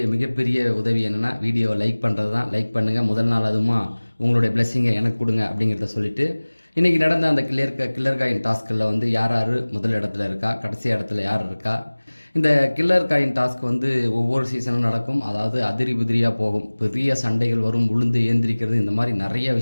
மிகப்பெரிய உதவி என்னென்னா வீடியோவை லைக் பண்ணுறது தான். லைக் பண்ணுங்கள். முதல் நாள் அதுமா உங்களுடைய பிளெஸ்ஸிங்கை எனக்கு கொடுங்க அப்படிங்கிறத சொல்லிவிட்டு இன்றைக்கி நடந்த அந்த கில்லர் காயின் டாஸ்கில் வந்து யார் முதல் இடத்துல இருக்கா, கடைசி இடத்துல யார் இருக்கா. இந்த கில்லர் காயின் டாஸ்க் வந்து ஒவ்வொரு சீசனும் நடக்கும். அதாவது அதிரி புதிரியாக போகும். பெரிய சண்டைகள் வரும், உளுந்து ஏந்திரிக்கிறது, இந்த மாதிரி நிறைய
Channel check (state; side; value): inverted; both; correlation -1.00